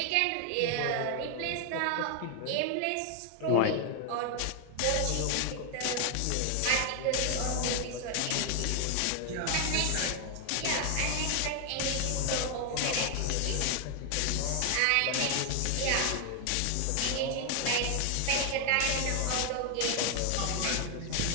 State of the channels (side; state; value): both; different; correlation 0.00